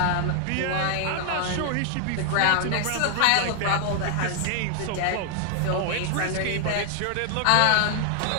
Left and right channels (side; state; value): both; different; correlation 0.00